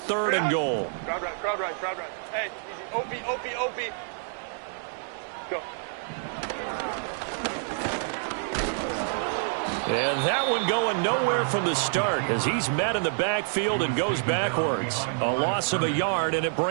and goal. Crowd right, crowd right, crowd right. Hey, easy. OP. Go. And that one going nowhere from the start as he's met in the backfield and goes backwards. A loss of a yard, and it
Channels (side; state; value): left; silent; digital silence